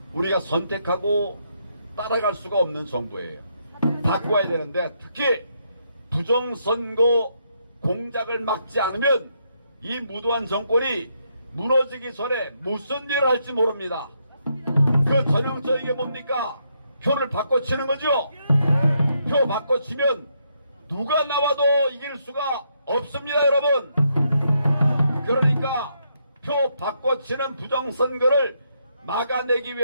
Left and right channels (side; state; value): both; inverted; correlation -0.77